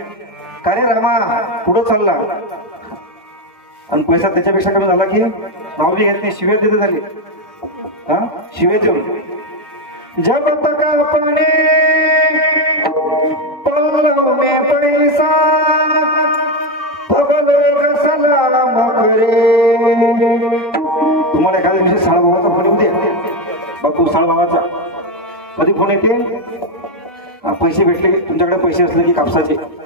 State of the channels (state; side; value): normal; both; correlation 0.09